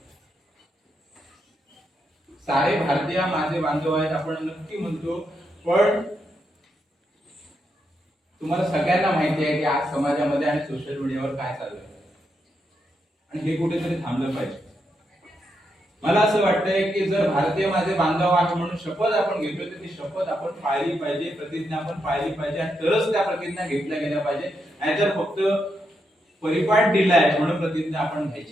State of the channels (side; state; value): both; normal; correlation 0.82